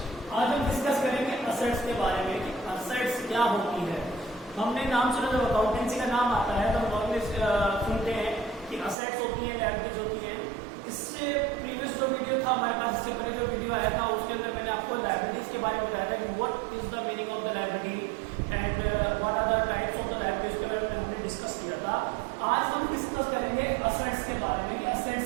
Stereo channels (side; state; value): left; drops out; at 9.0 s